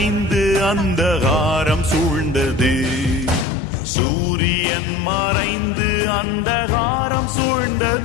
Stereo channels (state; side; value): drops out; right; at 3.5 s